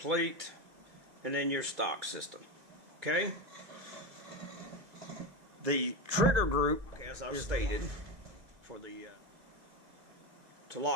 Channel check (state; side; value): late; left; 2.1 ms